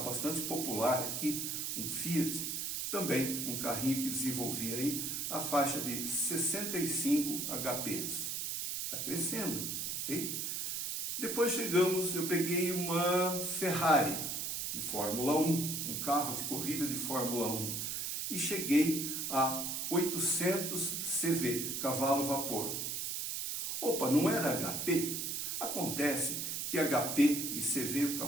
bastante popular aqui, um Fiat, também um carrinho que desenvolvia aí a faixa de 65 HPs. Está crescendo, ok? Depois eu peguei uma Ferrari de Fórmula 1, um carro de corrida de Fórmula 1, e cheguei a 800 CV, cavalo vapor. Opa, não era HP? Acontece que HP e CV,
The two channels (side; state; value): right; noise; hiss, 2 dB below the sound